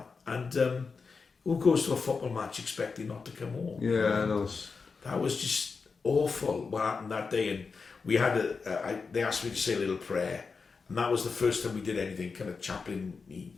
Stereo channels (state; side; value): quieter; right; 4.9 dB